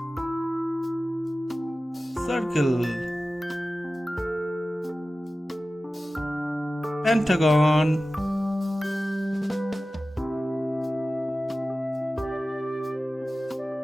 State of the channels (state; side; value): normal; both; correlation 0.95